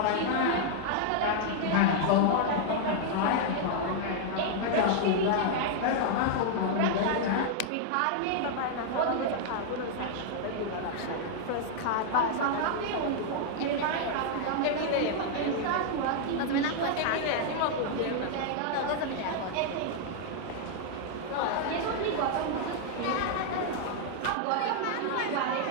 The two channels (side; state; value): both; different; correlation 0.00